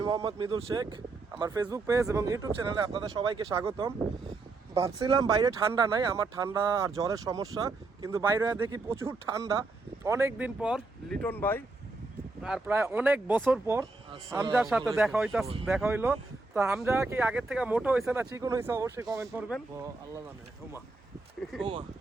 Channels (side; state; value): left; quieter; 3.4 dB